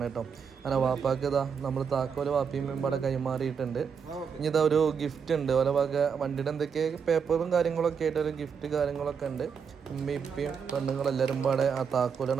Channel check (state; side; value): quieter; left; 6.5 dB